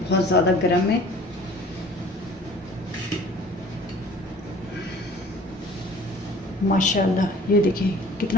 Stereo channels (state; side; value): normal; both; correlation 0.48